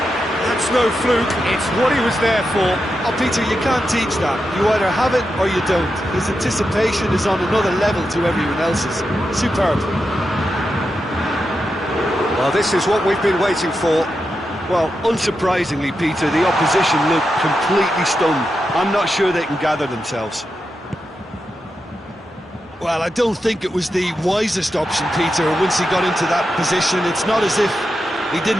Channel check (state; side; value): normal; both; correlation 0.88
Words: That's no fluke, it's what he was there for. Oh, Peter, you can't teach that. You either have it or you don't. His anticipation is on another level to everyone else's. Superb. Well, this is what we've been waiting for. Well, unsurprisingly, Peter, the opposition look completely stunned. I'm not sure they can gather themselves. Well, I don't think it was the wisest option, Peter, once he got into that position. It's not as if he